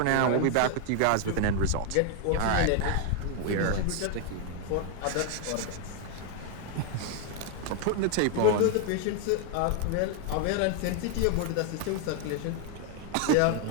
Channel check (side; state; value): both; different; correlation 0.00